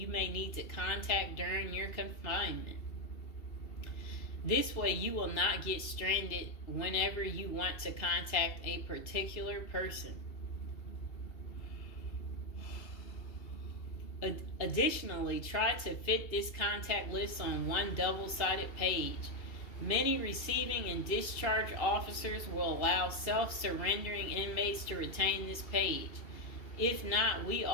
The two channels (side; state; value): right; late; 2.8 ms